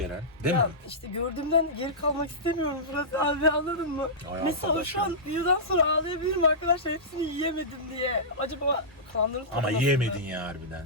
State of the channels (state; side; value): normal; both; correlation -0.16